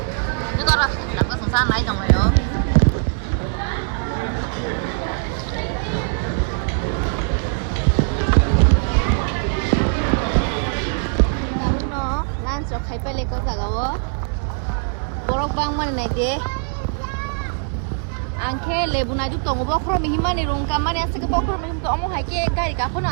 itu kok ras aku sengsan lai dong yo lan so khai pele ko jagao borok bang mani nai de angke lebu na ju tongo bokro mi himani rong kamani ase ke bokro mi him to omo hai ke gari ka phona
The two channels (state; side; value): silent; left; 57 dB below the other